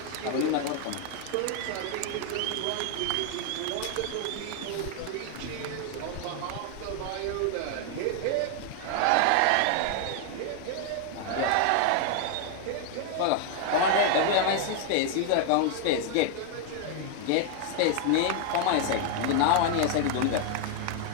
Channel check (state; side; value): different; both; correlation 0.00